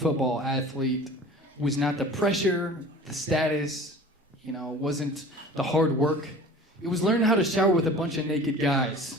athlete was not the pressure, the status, you know, wasn't the hard work. It was learning how to shower with a bunch of naked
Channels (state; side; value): normal; both; correlation 0.42